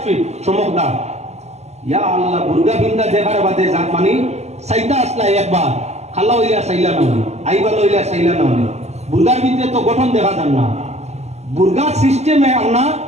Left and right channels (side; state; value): left; late; 0.32 ms